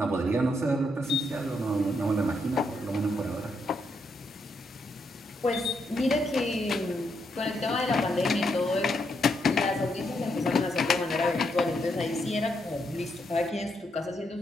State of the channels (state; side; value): normal; both; correlation 0.78